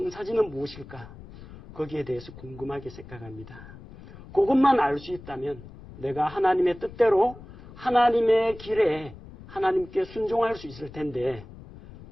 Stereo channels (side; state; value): left; noise; rumble, 17 dB below the sound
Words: 무엇일까? 거기에 대해서 궁금하게 생각합니다. 그것만 알 수 있다면 내가 하나님의 뜻대로 하나님의 길에 하나님께 순종할 수 있을 텐데,